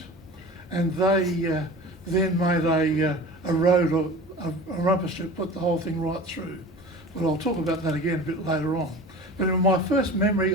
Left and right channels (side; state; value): both; normal; correlation 0.37